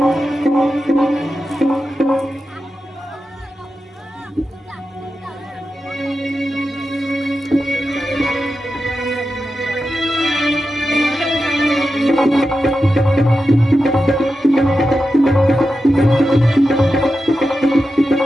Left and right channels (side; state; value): both; normal; correlation 0.91